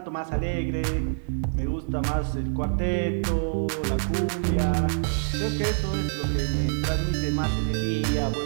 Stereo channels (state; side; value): silent; left; digital silence